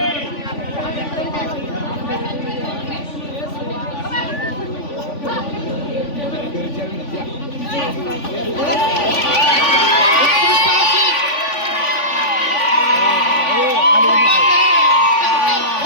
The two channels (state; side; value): late; right; 3.5 ms